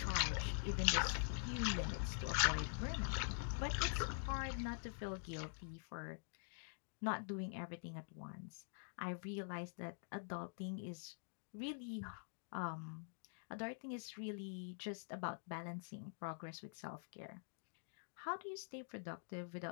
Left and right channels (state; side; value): silent; right; digital silence